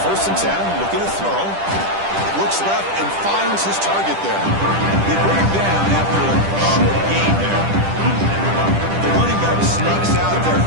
1st and 10, looking to throw. Looks left and finds his target there. They bring him down after a short gain there. The running back sneaks out there.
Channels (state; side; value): late; left; 10 ms